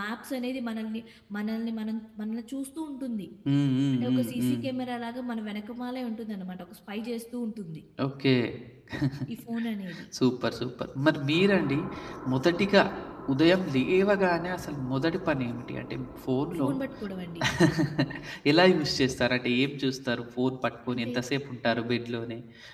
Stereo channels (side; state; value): both; identical; correlation 1.00